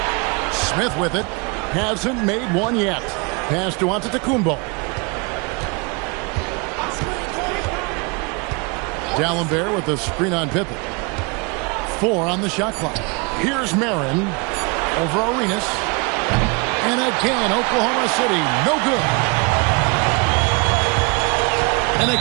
Smith with it. Hasn't made one yet. Pass to Antetokounmpo. D'Alembert with the screen on Pippen. 4 on the shot clock. Here's Marin over Arenas. And again, Oklahoma City, no good. And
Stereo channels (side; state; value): left; quieter; 30.1 dB